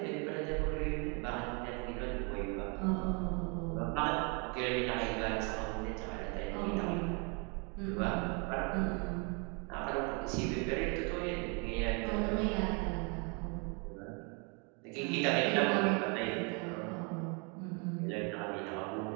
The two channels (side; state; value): left; quieter; 33.9 dB